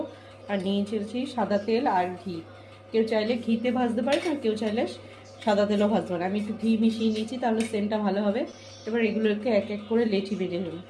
আর নিয়েছি সাদা তেল আর ঘি। কেউ চাইলে ঘিতে ভাজতে পারে, আর কেউ চাইলে সাদা তেলও ভাজতে পারে। আমি একটু ঘি মিশিয়ে নিয়েছি, তাহলে সেন্টটা ভালো হবে। এবার এগুলোকে এক এক করে লেচি বেজে নেব।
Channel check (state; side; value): identical; both; correlation 1.00